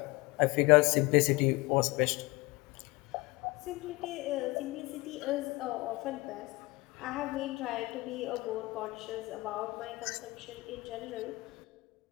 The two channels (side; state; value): right; quieter; 23.0 dB